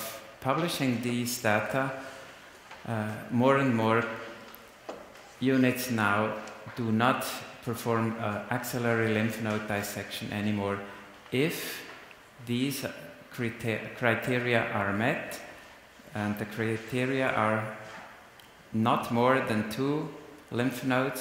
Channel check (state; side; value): identical; both; correlation 1.00